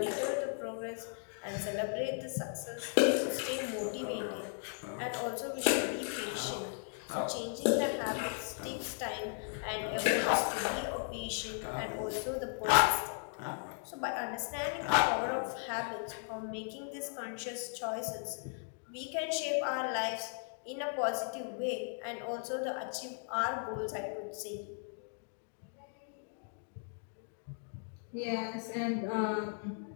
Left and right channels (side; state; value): right; silent; 53 dB below the other